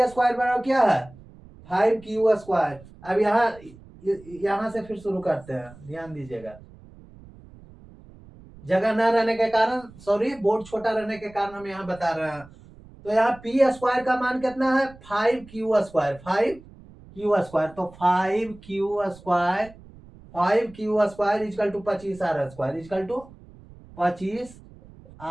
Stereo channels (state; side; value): noise; right; rumble, 22 dB below the sound